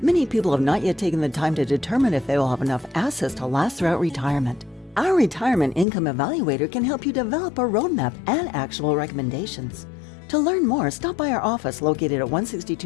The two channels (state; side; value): drops out; right; at 5.9 s